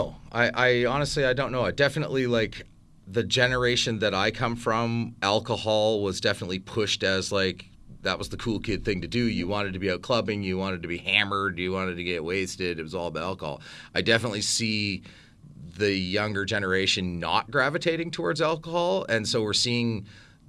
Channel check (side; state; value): both; identical; correlation 1.00